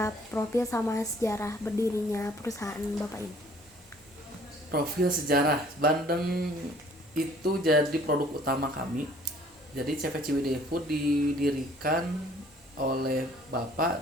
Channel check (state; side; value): normal; both; correlation 0.56